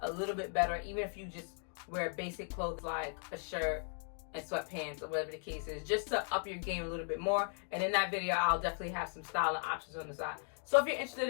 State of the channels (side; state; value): right; silent; 53 dB below the other